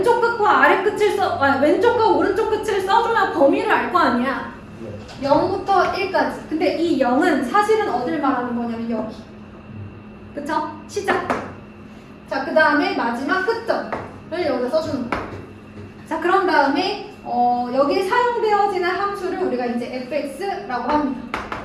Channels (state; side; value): identical; both; correlation 1.00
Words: 끝과 아래 끝을 왼쪽과 오른쪽 끝을 써줘야 범위를 알 거 아니야. 0부터 1까지. 근데 이 0은 사실은 어딜 말하는 거냐면 여기. 그쵸? 시작. 자, 그 다음에 마지막 끝점을 여기다 써주는 거야. 자, 그런 다음에 여기에 사용되어지는 함수를 우리가 이제 fx라고 합니다.